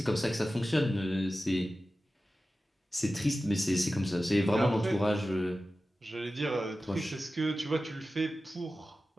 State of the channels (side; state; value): both; normal; correlation 0.94